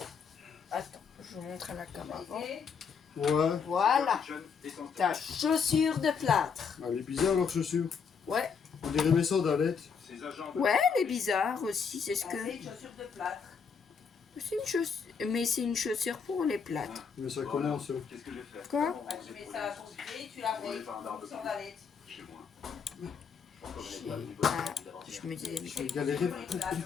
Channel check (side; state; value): right; quieter; 6.1 dB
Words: attends, je vous montre à la caméra. Ouais. Voilà, ta chaussure de plâtre. Elle est bizarre leur chaussure. Ouais, On dirait mes sandalettes. Ces agents. ouais, elle est bizarre aussi, c'est ce que. C'est une chaussure de plâtre. C'est une chaussure, mais c'est une chaussure pour les plâtres. Mais ça commence. Qu'est-ce que j'ai fait? Quoi? Bah, tu mets ça à ton pied, tu la mets une sandalette. Chez moi. Ah, je me disais. J'ai galéré